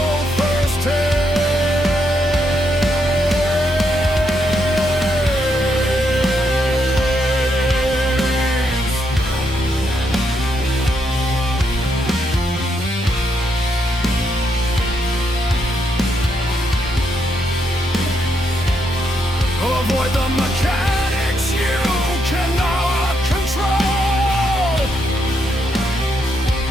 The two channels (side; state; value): both; normal; correlation 0.78